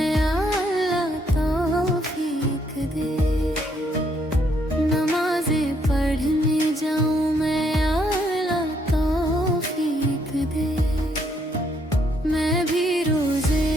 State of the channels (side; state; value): both; normal; correlation 0.71